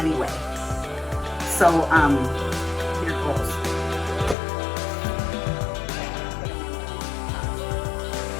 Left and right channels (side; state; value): right; drops out; at 4.4 s